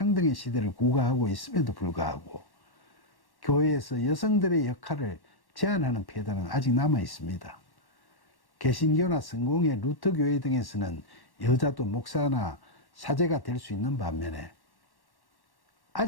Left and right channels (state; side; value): late; right; 1.1 ms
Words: 시대를 구가하고 있음에도 불구하고 교회에서 여성들의 역할을 제한하는 폐단은 아직 남아 있습니다. 개신교나 성공회, 루터교회 등에서는 여자도 목사나 사제가 될 수 있는 반면에